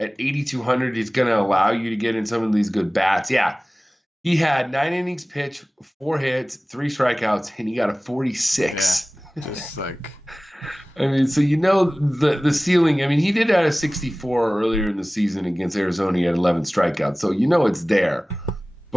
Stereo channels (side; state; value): both; normal; correlation 0.98